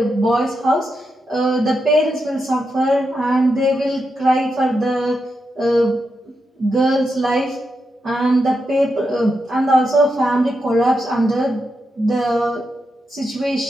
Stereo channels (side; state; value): both; normal; correlation 0.86